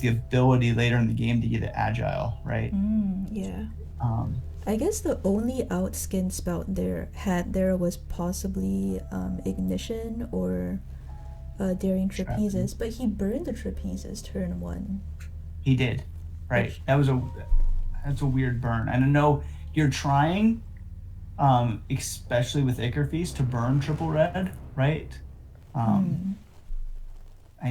ability later in the game to get it agile, right? I guess the only out SkintSpout there was possibly Ignition or daring trapezes, but he burned the trapezes turn 1. He did, right? Which- That's a weird burn. And I know you're trying, especially with Ichor Feast, to burn triple red, right?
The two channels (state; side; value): identical; both; correlation 1.00